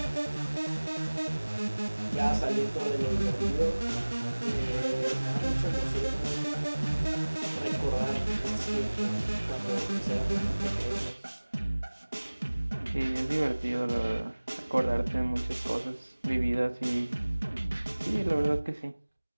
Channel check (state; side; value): inverted; both; correlation -1.00